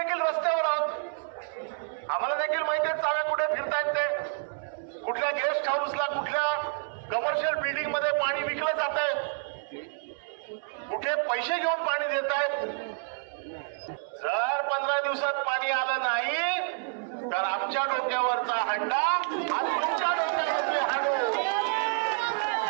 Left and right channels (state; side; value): silent; left; 59 dB below the other